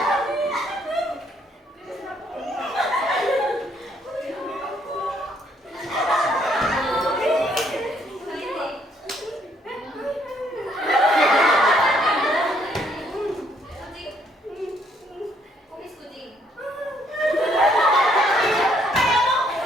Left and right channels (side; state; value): both; normal; correlation 0.68